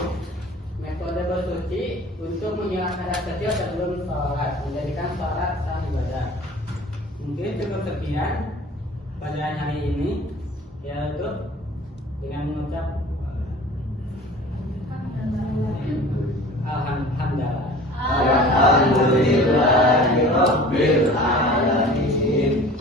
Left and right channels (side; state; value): both; normal; correlation 0.43